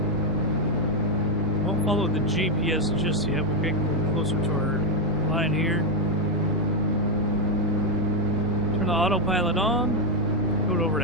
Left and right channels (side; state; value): both; normal; correlation 0.04